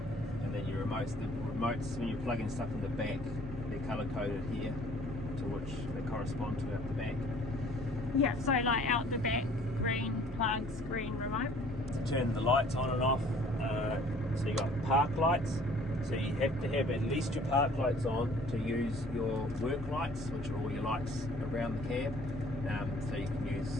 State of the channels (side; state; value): both; normal; correlation 0.54